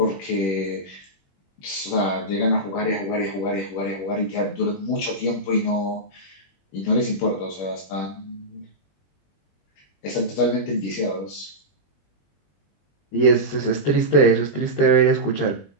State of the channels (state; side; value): late; right; 21 ms